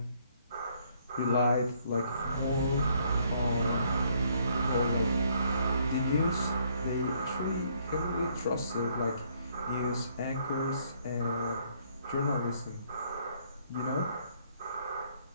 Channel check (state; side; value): inverted; both; correlation -0.67